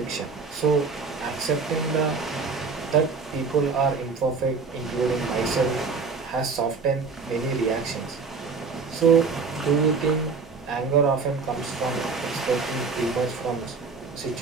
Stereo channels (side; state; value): left; quieter; 4.7 dB